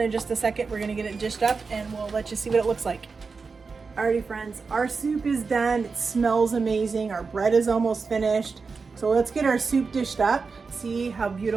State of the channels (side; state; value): left; quieter; 4.7 dB